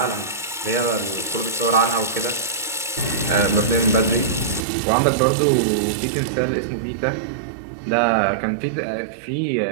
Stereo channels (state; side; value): drops out; left; at 4.7 s